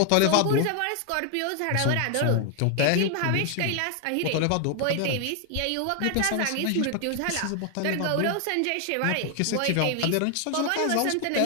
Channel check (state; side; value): different; both; correlation 0.00